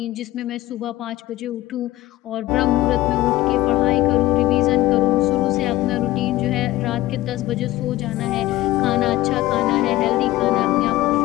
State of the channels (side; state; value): right; quieter; 16.8 dB